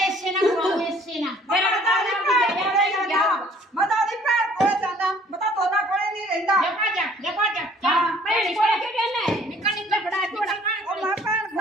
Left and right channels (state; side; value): normal; both; correlation 0.56